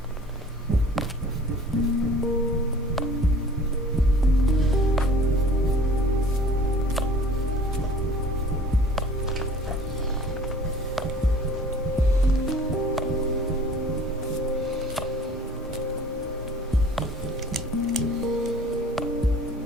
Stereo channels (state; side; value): normal; both; correlation 0.49